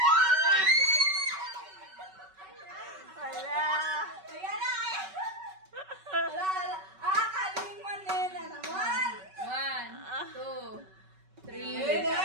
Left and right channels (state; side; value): late; left; 5.3 ms